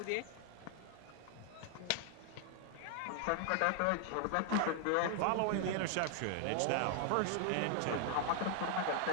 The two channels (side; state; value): both; different; correlation 0.00